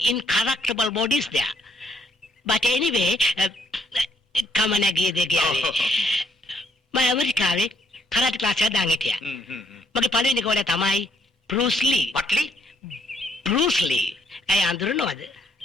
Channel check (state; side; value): normal; both; correlation 0.70